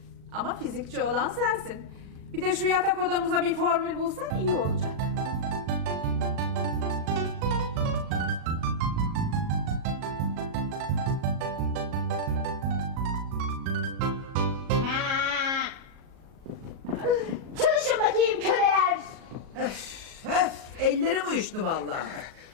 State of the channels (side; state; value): left; late; 37 ms